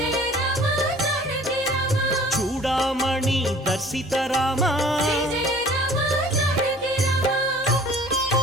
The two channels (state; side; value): noise; left; hum, 26 dB below the sound